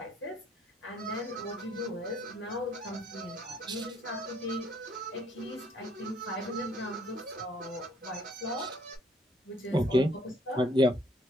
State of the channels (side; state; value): both; normal; correlation 0.63